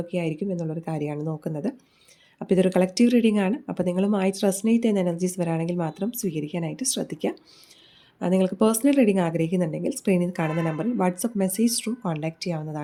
എന്നുള്ളൊരു കാര്യമാണ് നോക്കുന്നത്. അപ്പോൾ ഇതൊരു കളക്റ്റീവ് റീഡിംഗ് ആണ്. അപ്പോൾ നിങ്ങളുമായിട്ട് റെസനേറ്റ് ചെയ്യുന്ന എനർജീസ് വരാണെങ്കിൽ മാത്രം സ്വീകരിക്കാനായിട്ട് ശ്രദ്ധിക്കുക. നിങ്ങൾക്ക് പേഴ്സണൽ റീഡിംഗ് ആഗ്രഹിക്കുന്നുണ്ടെങ്കിൽ സ്ക്രീനിൽ കാണുന്ന നമ്പറിൽ വാട്സപ്പ് മെസ്സേജ് ത്രൂ കോൺടാക്റ്റ്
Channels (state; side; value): identical; both; correlation 1.00